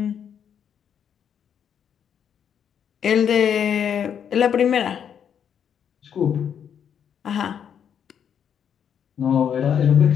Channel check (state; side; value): quieter; right; 8.3 dB